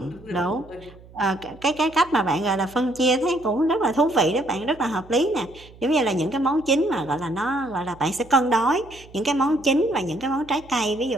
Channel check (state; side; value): noise; right; hum, 22 dB below the sound